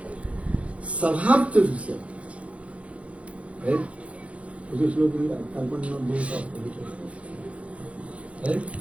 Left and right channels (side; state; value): left; late; 0.063 ms